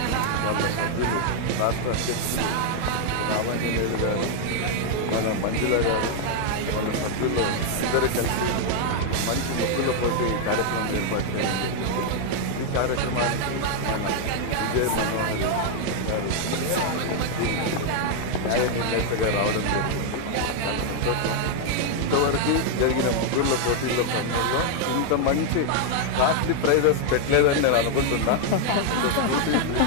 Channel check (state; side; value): different; both; correlation 0.00